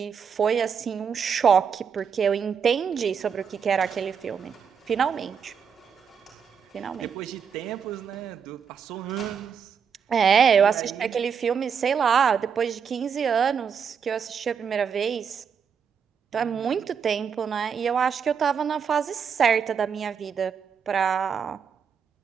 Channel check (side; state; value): left; quieter; 6.9 dB